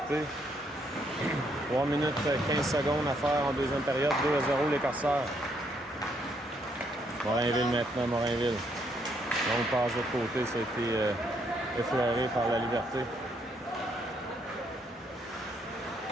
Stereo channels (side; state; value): both; normal; correlation 0.72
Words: 3 minutes 15 secondes à faire en deuxième période. 2-0 les Corsaires. Morinville maintenant, Morinville. Donc passe de l'autre côté, ça a été effleuré par la Liberté.